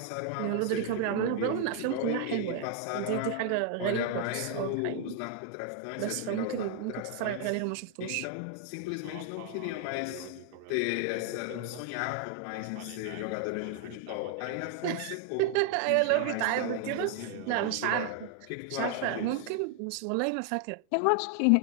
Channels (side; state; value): both; different; correlation 0.00